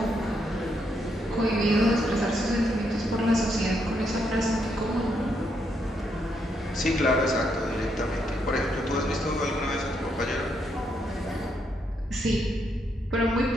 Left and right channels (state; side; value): normal; both; correlation 0.77